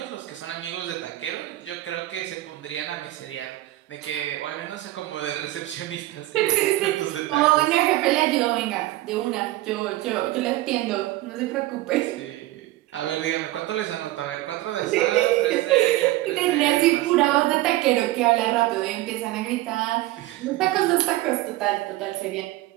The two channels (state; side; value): quieter; left; 17.1 dB